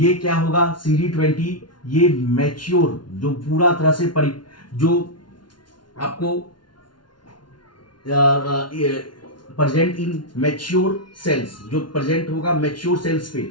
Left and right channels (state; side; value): late; right; 0.71 ms